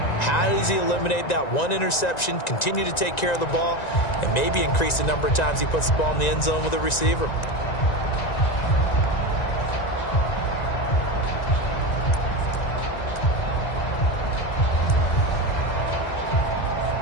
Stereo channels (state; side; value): late; right; 1.9 ms